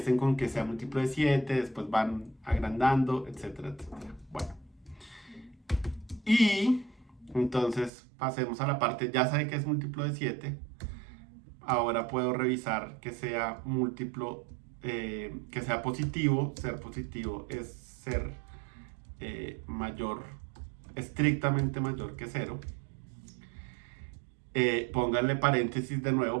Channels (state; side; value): drops out; left; at 7.9 s